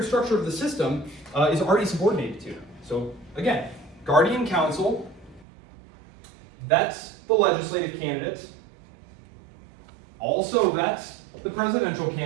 structure of the system is already subordinated to. So again, Guardian Council vets the legislative candidates, also vets the presidential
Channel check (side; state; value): left; drops out; at 5.5 s